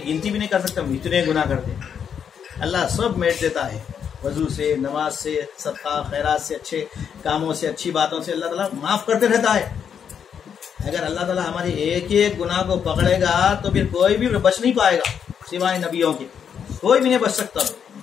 گنتی بھی نہیں کر سکتا ہم اتنے گناہ کرتے ہیں۔ اللہ سب میٹ دیتا ہے، وضو سے، نماز سے، صدقہ خیرات سے، اچھے کاموں سے، اچھی باتوں سے اللہ تعالیٰ معاف کرتے رہتا ہے۔ اگر اللہ تعالیٰ ہمارے ایک ایک گناہ کو پکڑے گا تو پھر کوئی بھی بچ نہیں پائے گا سوائے نبیوں کے، کوئی بھی نہیں بچ سکتا۔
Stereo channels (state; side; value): quieter; right; 7.7 dB